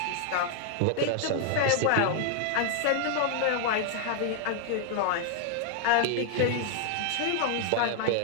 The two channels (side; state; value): both; different; correlation 0.00